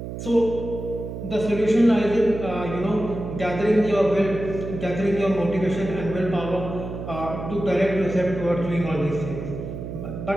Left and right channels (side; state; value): right; noise; hum, 8 dB below the sound